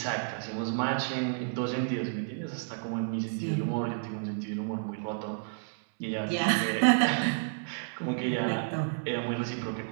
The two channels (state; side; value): silent; left; 57 dB below the other